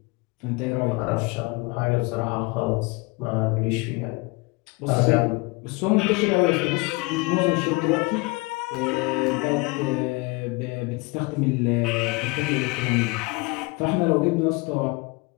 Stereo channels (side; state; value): right; quieter; 26.2 dB